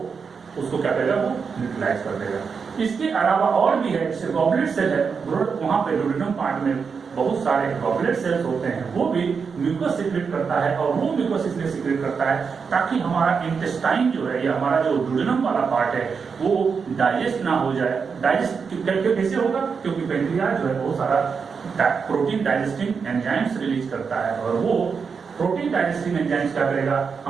उसको क्या करेगा, वो न्यूट्रलाइज कर देगा। इसके अलावा और भी है, जैसे गॉबलेट सेल है, वहां पे डुओडेनम पार्ट में बहुत सारे गॉबलेट सेल्स होते हैं, वो भी म्यूकस सिक्रेट करता है और वो म्यूकस इसलिए सिक्रेट करता है ताकि हमारा इंटेस्टाइन जो है या हमारा जो डुओडेनम वाला पार्ट है वो डाइजेस्ट ना हो जाए। डाइजेस्ट कैसे होगा, क्योंकि पैंक्रियाज जो है बहुत सारा प्रोटीन डाइजेस्टिंग एंजाइम्स रिलीज करता है और वो प्रोटीन डाइजेस्टिंग एंजाइम्स क्या करेगा,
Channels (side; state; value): left; quieter; 5.7 dB